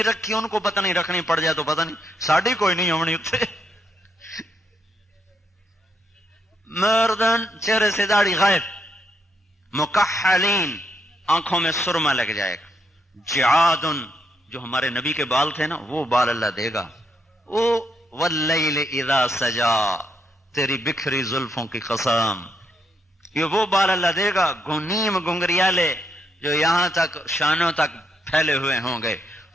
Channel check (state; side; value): normal; both; correlation 0.77